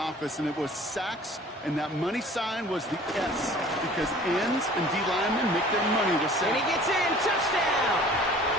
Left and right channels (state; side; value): normal; both; correlation 0.48